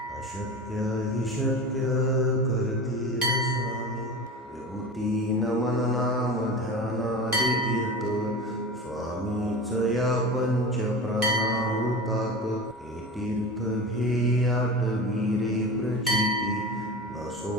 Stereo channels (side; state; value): both; normal; correlation 0.30